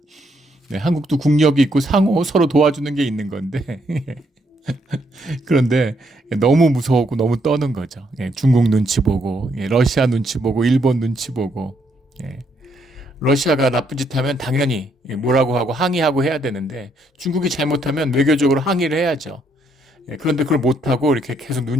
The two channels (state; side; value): normal; both; correlation 0.73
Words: 한국도 국력이 있고 상호 서로 도와주는 게 있는 건데 그런데 너무 무서웠고 너무 떠는 거죠. 중국 눈치 보고, 러시아 눈치 보고, 일본 눈치 보고. 러시아가 나쁜 짓 하면 당연히 뭐라고 하고 항의하고 해야 되는데, 중국이 잘못하면 외교적으로 항의를 해야죠. 그런데 그걸 못하고 이렇게 계속